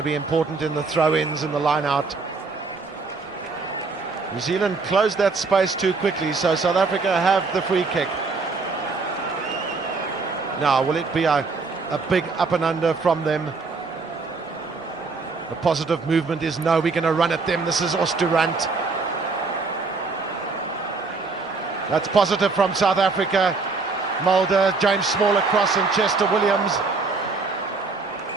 be important in the throw-ins and the line-out. New Zealand closed that space too quickly, so South Africa have the free kick. Now, will it be a big up and under from them? The positive movement is no, we're going to run at them. This is Oosterhuis. That's positive from South Africa. Mulder, James Small across, and Chester Williams.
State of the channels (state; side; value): quieter; left; 4.1 dB